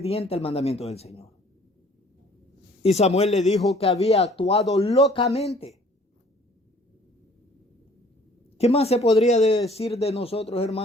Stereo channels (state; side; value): normal; both; correlation 0.55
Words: al mandamiento del Señor. Y Samuel le dijo que había actuado locamente. ¿Qué más se podría decir de nosotros,